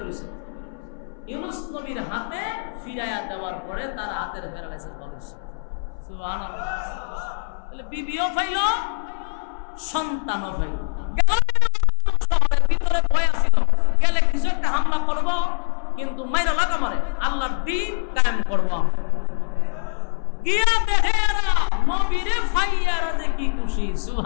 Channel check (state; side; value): silent; right; 64 dB below the other